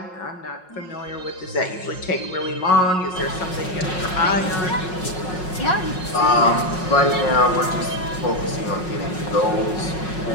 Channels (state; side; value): late; right; 5.5 ms